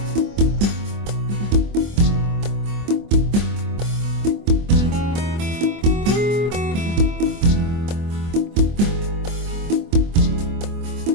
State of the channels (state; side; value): late; left; 24 ms